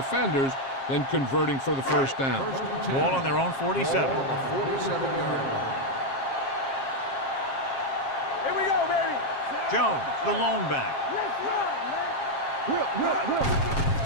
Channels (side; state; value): right; late; 7.4 ms